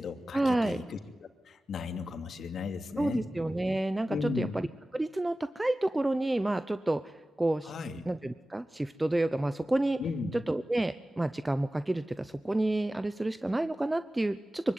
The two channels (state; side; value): normal; both; correlation 0.96